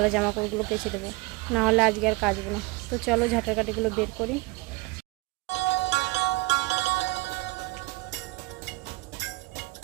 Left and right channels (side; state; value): left; quieter; 23.1 dB